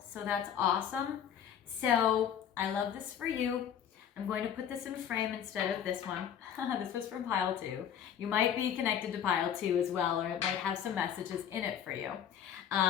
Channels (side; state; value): right; quieter; 9.1 dB